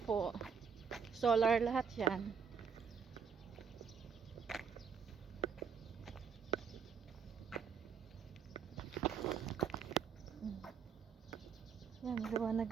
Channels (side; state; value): left; quieter; 6.6 dB